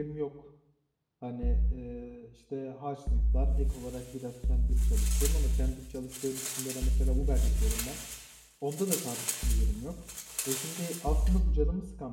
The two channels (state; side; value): identical; both; correlation 1.00